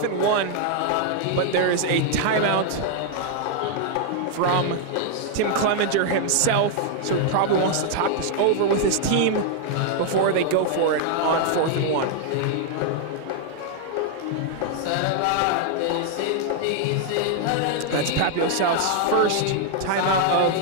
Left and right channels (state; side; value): different; both; correlation 0.00